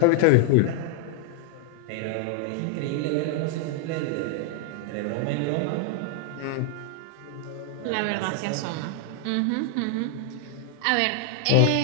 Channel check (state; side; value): different; both; correlation 0.00